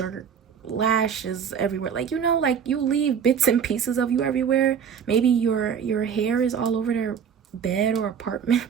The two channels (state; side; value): quieter; left; 7.5 dB